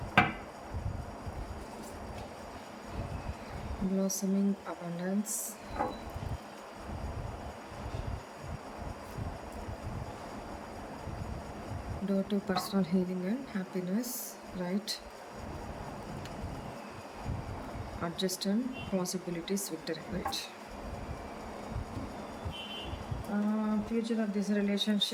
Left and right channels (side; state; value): both; identical; correlation 1.00